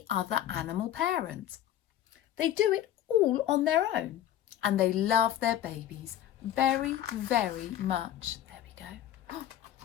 other animal parent. They do it all on their own and they love their babies very, very much. There we go.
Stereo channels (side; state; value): right; quieter; 11.9 dB